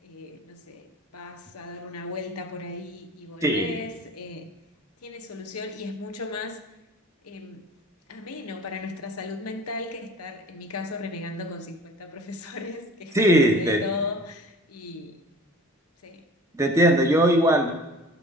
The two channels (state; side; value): normal; both; correlation 0.45